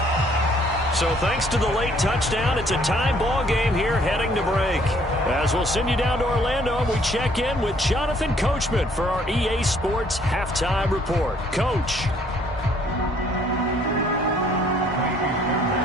So thanks to the late touchdown, it's a tie ball game here heading to break. As we'll send you down to Orlando, and we check in with Jonathan Coachman for our EA Sports Halftime Report. Coach.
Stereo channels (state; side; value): normal; both; correlation 0.62